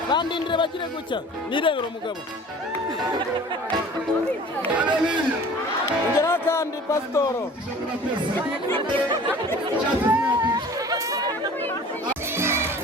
kandi ndire bagire gucya nirebera umugabo ngera kandi pastoro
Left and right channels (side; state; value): both; normal; correlation 0.45